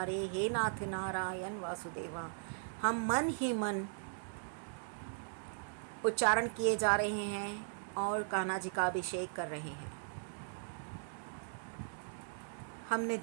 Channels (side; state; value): left; silent; digital silence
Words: हे नाथ नारायण वासुदेवा, हम मन ही मन उच्चारण किए जा रहे हैं और कान्हा जी का अभिषेक कर रहे हैं। हमने